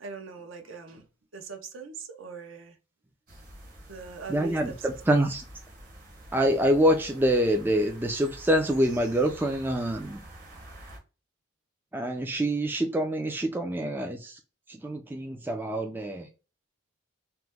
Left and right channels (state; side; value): normal; both; correlation 0.57